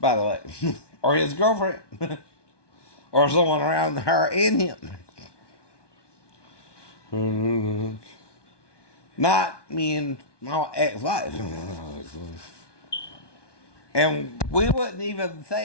the way. Or his girlfriend. Or someone around her and him. Not me and my ex-wife. And we wouldn't even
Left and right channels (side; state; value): right; late; 1.2 ms